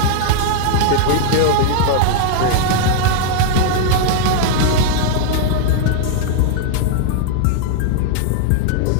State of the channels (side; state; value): both; different; correlation -0.01